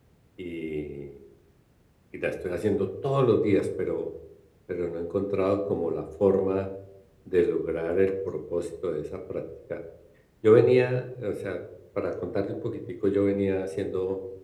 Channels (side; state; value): both; identical; correlation 1.00